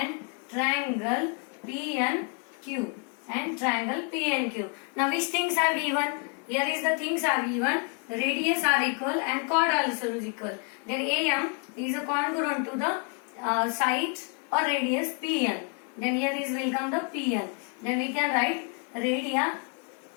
triangle PNQ and triangle PNQ. Now which things are given? Here is the things are given. Radius are equal and chord also is equal. Then AM is congruent to the side or radius PN. Then here is will come the PN. Then we can write radii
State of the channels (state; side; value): quieter; right; 38.1 dB